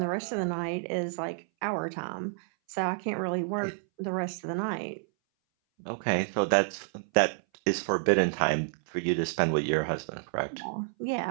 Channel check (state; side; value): silent; left; 58 dB below the other